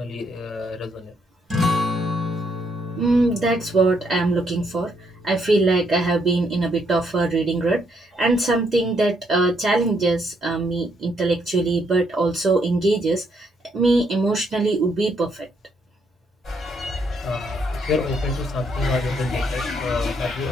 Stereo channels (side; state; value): both; normal; correlation 0.73